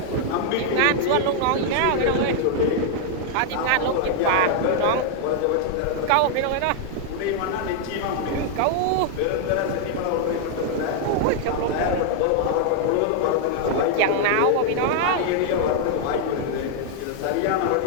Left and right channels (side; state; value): both; different; correlation 0.00